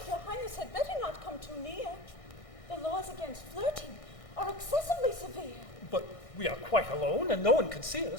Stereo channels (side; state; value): right; late; 1.6 ms